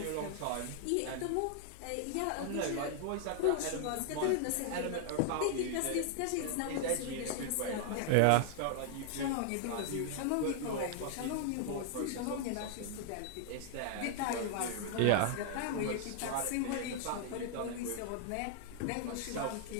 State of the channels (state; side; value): different; both; correlation 0.00